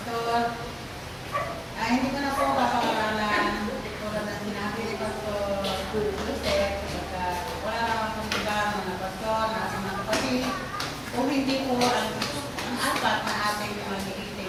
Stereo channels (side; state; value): both; identical; correlation 1.00